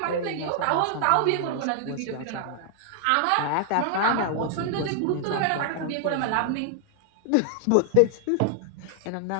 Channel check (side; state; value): both; different; correlation 0.00